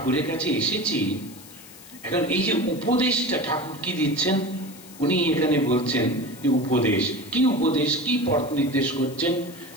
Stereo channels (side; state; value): left; noise; hiss, 19 dB below the sound